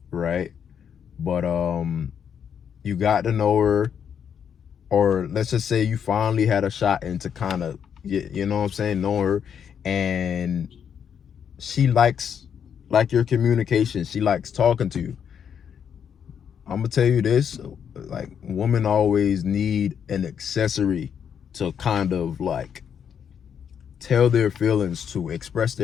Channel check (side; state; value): right; quieter; 7.9 dB